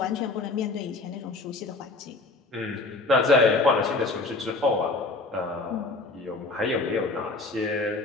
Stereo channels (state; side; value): quieter; right; 3.5 dB